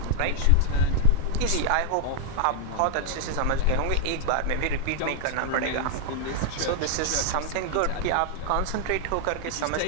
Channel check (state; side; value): different; both; correlation 0.00